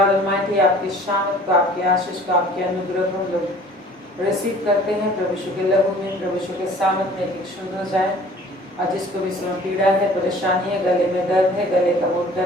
ऑलमाइटी, आपकी शान को, आपकी आशीष को, आपके अनुग्रह को हम लोग रिसीव करते हैं। प्रभु यीशु के लहू में, प्रभु यीशु के सामर्थ्य में एक शुद्ध हो जाए। और जिसको भी इसमें पीड़ा है, परेशानी है, गले में दर्द है, गले का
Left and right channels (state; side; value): normal; both; correlation 0.50